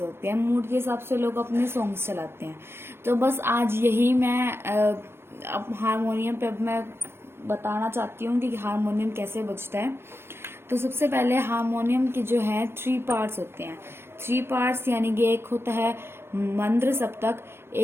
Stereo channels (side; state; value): left; late; 0.12 ms